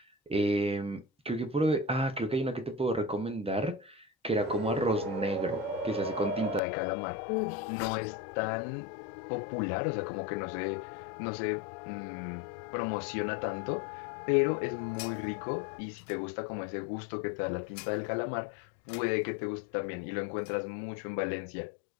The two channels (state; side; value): drops out; right; at 6.6 s